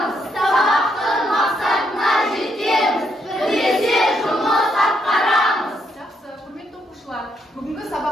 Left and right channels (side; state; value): both; normal; correlation 0.76